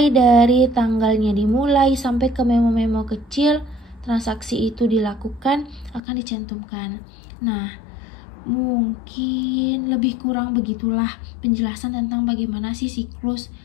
dari tanggalnya dimulai sampai ke memo-memo kecil, transaksi itu dilakukan akan dicantumkan. Nah, mungkin lebih kurang begitulah penjelasan tentang bagaimana sih siklus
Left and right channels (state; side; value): drops out; right; at 6.0 s